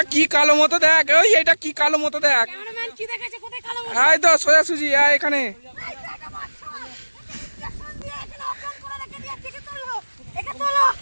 কি কালো মতো দেখ, ওই এটা কি কালো মতো দেখ। ক্যামেরাম্যান কি দেখেছে? কোথায় কালো মতো? এই তো সোজা সুজি এখানে। এই তো একটা বাচ্চা, ইনজেকশন দিয়ে এখানে অজ্ঞান করে রেখে দিয়েছে। একে তোলো, একে তোলো,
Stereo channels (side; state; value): both; inverted; correlation -1.00